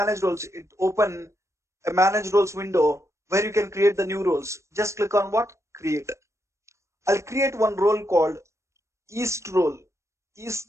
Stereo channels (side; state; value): left; late; 0.14 ms